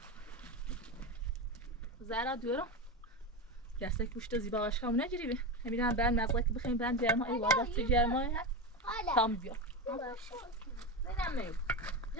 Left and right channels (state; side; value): normal; both; correlation 0.18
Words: زرا دیورم دسته پوشت زیبا باشه همون نجریبه همین بعد مزرعه که بخیم برن جرما ای وادت جرما تام بیا نمیدونم